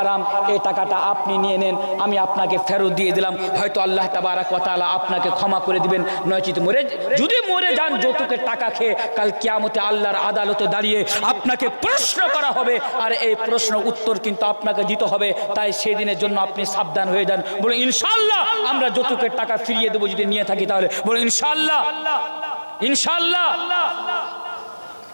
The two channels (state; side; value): inverted; both; correlation -1.00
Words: এই টাকাটা আপনি নিয়ে নেন, আমি আপনাকে ফেরত দিয়ে দিলাম। হয়তো আল্লাহ তাবারাক ওয়া তাআলা আপনাকে ক্ষমা করে দিবেন। নয়তো যদি মরে যান যৌতুকের টাকা খেয়ে, কাল কিয়ামতে আল্লাহর আদালতে দাঁড়িয়ে আপনাকে প্রশ্ন করা হবে, আর এই প্রশ্ন উত্তর কিন্তু আপনাকে দিতে হবে। তাই সেদিনের জন্য আপনি সাবধান হয়ে যান। বলে ইনশাআল্লাহ আমরা যৌতুকের টাকা ফিরিয়ে দেবো যদি নিয়ে থাকি তাহলে। বলে ইনশাআল্লাহ। ইনশাআল্লাহ।